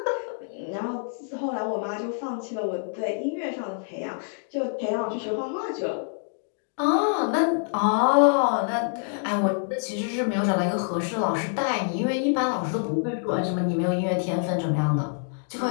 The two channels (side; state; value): right; silent; 61 dB below the other